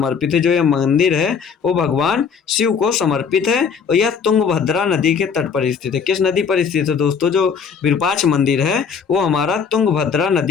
है। जो यह मंदिर है वो भगवान शिव को समर्पित है और यह तुंगभद्रा नदी के तट पर स्थित है। किस नदी पर स्थित है दोस्तों? जो विरूपाक्ष मंदिर है वो हमारा तुंगभद्रा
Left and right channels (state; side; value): quieter; right; 6.3 dB